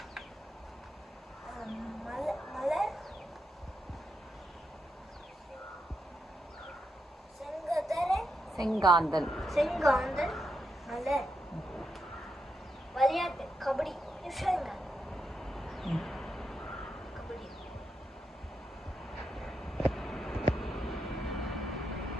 மலர், செங்காந்தல் மலர். விளையாட்டு, கபடி.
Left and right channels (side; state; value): both; normal; correlation 0.84